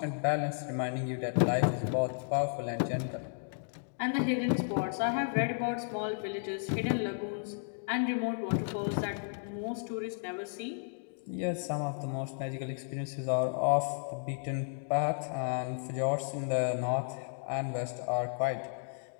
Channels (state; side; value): silent; right; digital silence